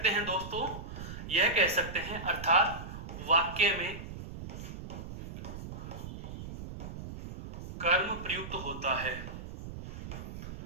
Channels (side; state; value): right; noise; rumble, 9 dB below the sound